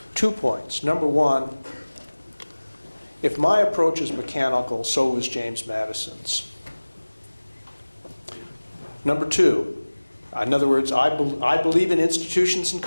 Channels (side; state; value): both; inverted; correlation -1.00